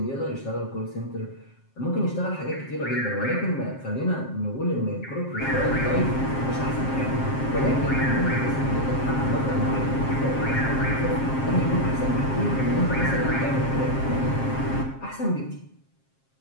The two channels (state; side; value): late; right; 7.5 ms